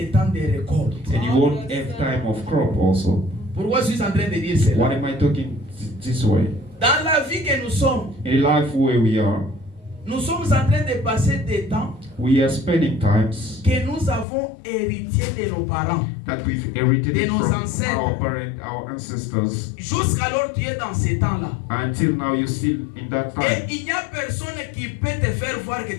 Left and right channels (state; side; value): drops out; right; at 14.2 s